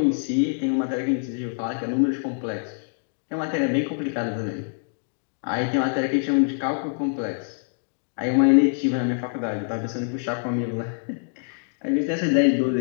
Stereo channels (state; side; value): silent; right; digital silence